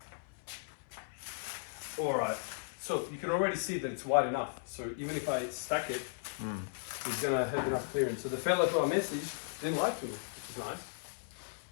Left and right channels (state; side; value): silent; right; 54 dB below the other